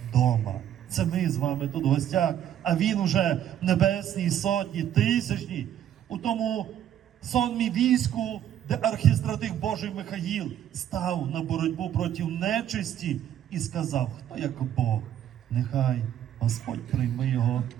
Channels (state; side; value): quieter; left; 10.6 dB